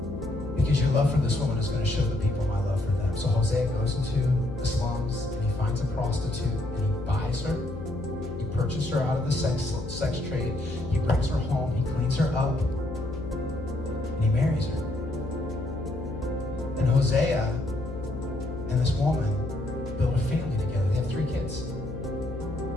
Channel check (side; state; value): left; noise; hum, 8 dB below the sound